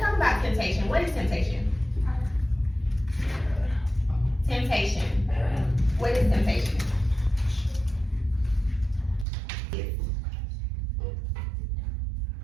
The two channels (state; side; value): drops out; left; at 9.2 s